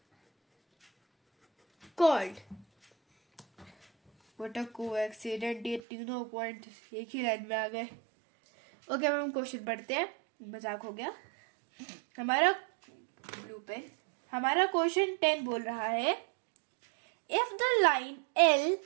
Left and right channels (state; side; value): drops out; left; at 5.8 s